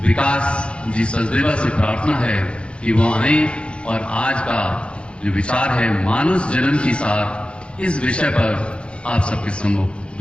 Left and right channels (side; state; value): right; late; 0.058 ms